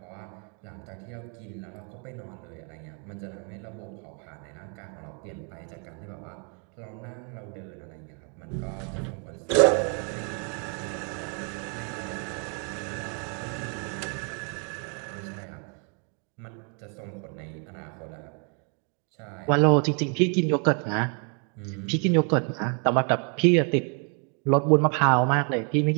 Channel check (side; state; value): left; quieter; 38.5 dB